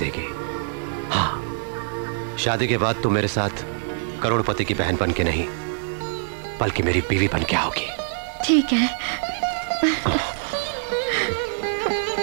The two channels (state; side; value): silent; left; 63 dB below the other